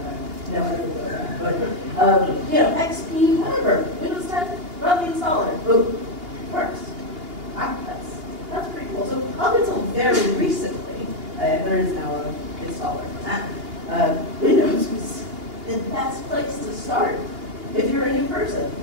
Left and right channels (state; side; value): late; left; 2.8 ms